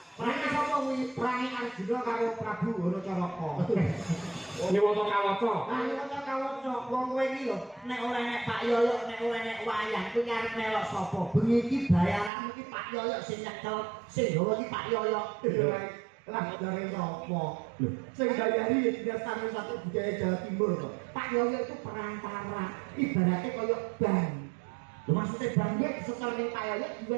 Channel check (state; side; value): drops out; left; at 12.3 s